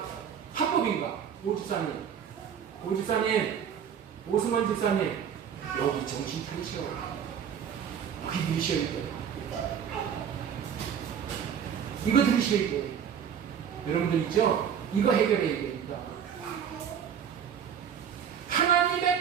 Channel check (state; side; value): quieter; left; 8.1 dB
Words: 합법인가? 오집사님, 오승원 집사님, 여기 정신 차리셔. 여기 들으셔야 돼요. 이거 들으셔야 돼요. 여러분들 있죠? 이거 해결해야 됩니다.